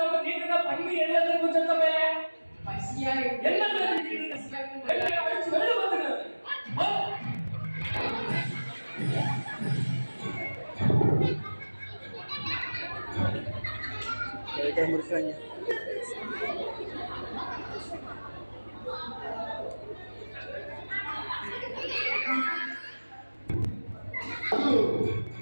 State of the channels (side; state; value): both; inverted; correlation -1.00